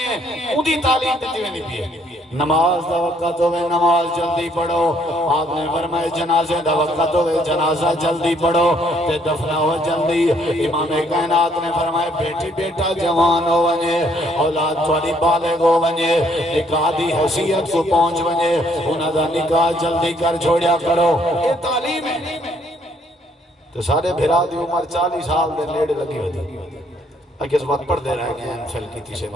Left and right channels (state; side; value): normal; both; correlation 0.67